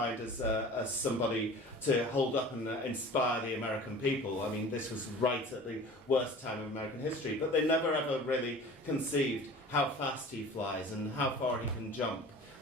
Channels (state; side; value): normal; both; correlation 0.41